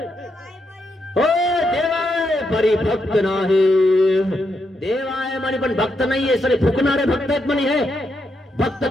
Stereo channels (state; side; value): normal; both; correlation 0.81